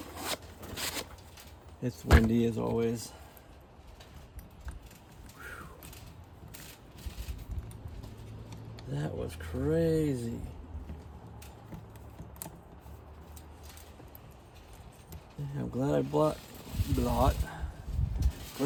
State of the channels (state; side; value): identical; both; correlation 1.00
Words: it's windy as always. That was crazy. Yeah, I'm glad I